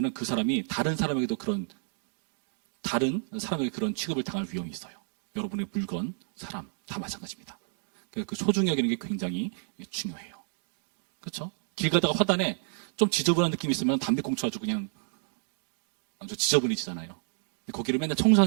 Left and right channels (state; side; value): silent; left; digital silence